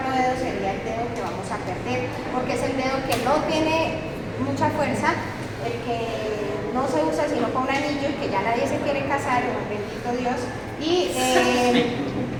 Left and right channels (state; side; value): identical; both; correlation 1.00